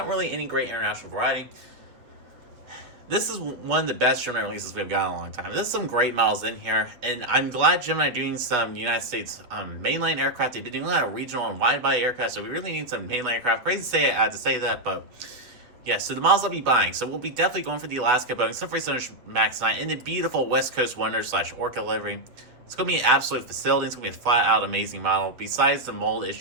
really any great international variety. This is one of the best Gemini releases we've got in a long time. There's some great models in here, and I'm glad Gemini are doing some United States mainline aircraft. They've been doing a lot of regional and wide-body aircraft, so we really need some mainline aircraft. Crazy to say I had to say that, but yeah, so the models I'll be buying. So we'll be definitely going for the Alaska Boeing 747 MAX 9 in the beautiful West Coast Wonder / Orca livery. It's going to be an absolute facility. It's going to be a flat-out amazing model, besides the mold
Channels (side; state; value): left; late; 7.6 ms